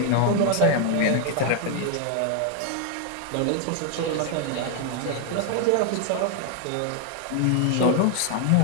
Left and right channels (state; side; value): different; both; correlation 0.00